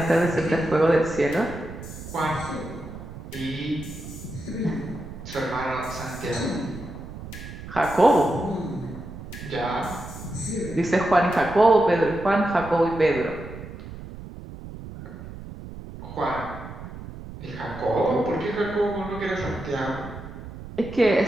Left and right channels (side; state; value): right; noise; rumble, 12 dB below the sound